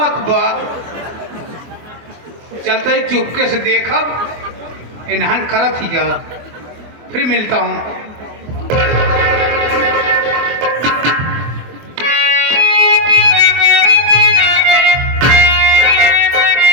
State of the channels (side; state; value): left; late; 24 ms